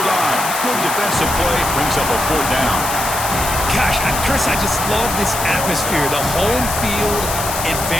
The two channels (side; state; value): left; noise; hiss, 5 dB below the sound